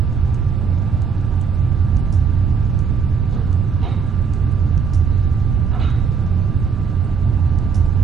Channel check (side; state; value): left; quieter; 6.0 dB